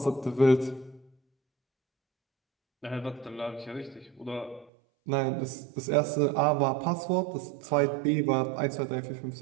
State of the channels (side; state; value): left; drops out; at 4.7 s